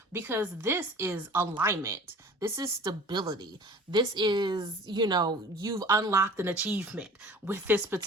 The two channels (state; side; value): normal; both; correlation 0.43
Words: Because this is alignment. This is stability. This is, you've unlocked an achievement with this